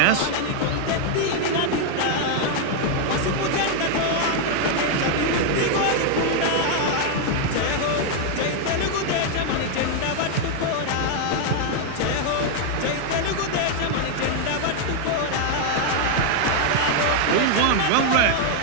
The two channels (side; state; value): both; different; correlation 0.00